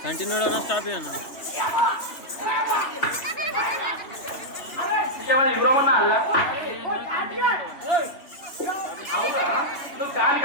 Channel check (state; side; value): late; right; 2.9 ms